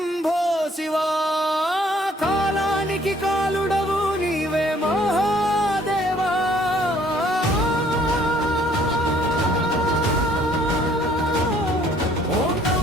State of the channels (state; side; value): normal; both; correlation 0.61